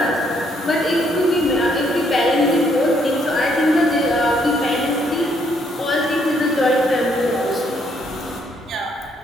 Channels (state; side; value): normal; both; correlation 0.70